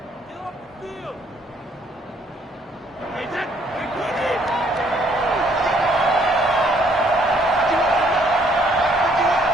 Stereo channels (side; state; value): both; normal; correlation 0.65